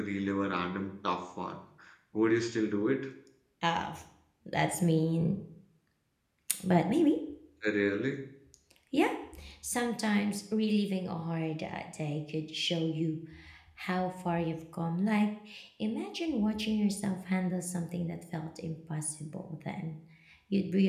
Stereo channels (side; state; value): both; identical; correlation 1.00